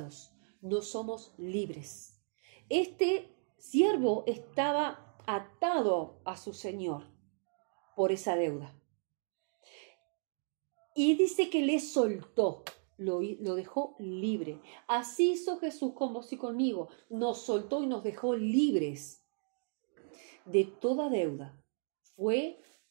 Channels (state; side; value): silent; left; 54 dB below the other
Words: no somos libres. Este siervo estaba atado a su señor por esa deuda. Y dice que le soltó, lo dejó libre. Así hizo Jesús con vos y conmigo. Nos soltó y nos dejó libres de toda deuda. Fue